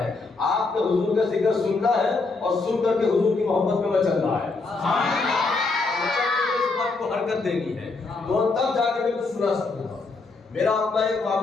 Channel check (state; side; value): quieter; right; 3.8 dB